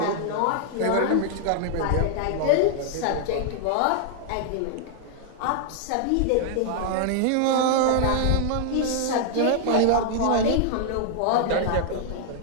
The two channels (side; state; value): both; different; correlation -0.01